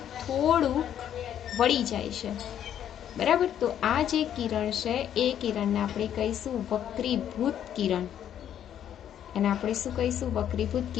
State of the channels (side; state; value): right; quieter; 10.1 dB